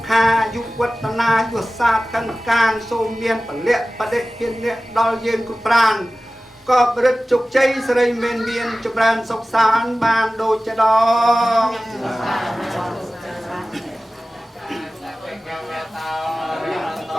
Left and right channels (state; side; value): normal; both; correlation 0.96